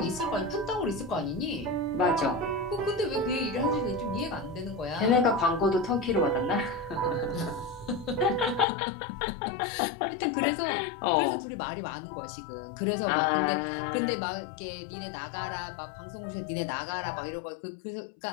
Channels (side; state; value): right; drops out; at 8.7 s